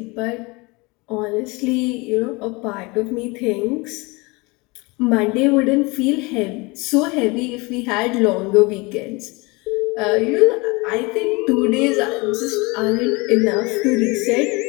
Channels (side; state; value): right; quieter; 26.0 dB